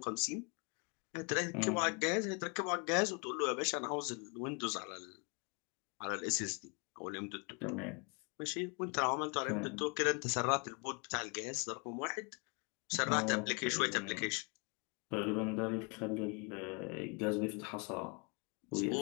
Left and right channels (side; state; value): right; quieter; 33.6 dB